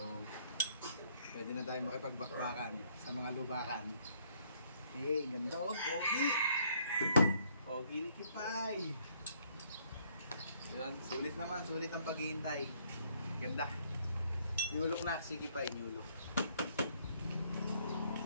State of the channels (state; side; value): inverted; both; correlation -0.67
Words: pwede na tayo makipagbakbakan sa mga lubakan. Hey, ganda oh, pogi! Pogi ni Kipay! Yun, sulit naman, sulit ang paghihintay. Ganda. Nyulok na si Kipay, nyulok.